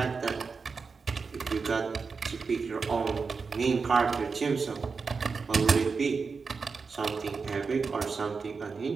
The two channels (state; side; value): quieter; left; 4.9 dB